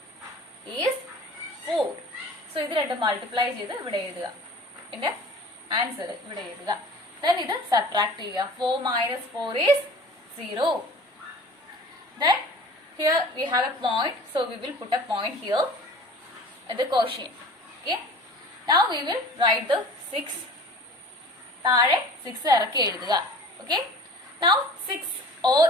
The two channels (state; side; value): normal; both; correlation 0.43